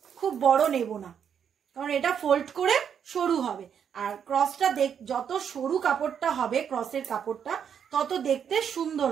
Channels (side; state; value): left; quieter; 8.0 dB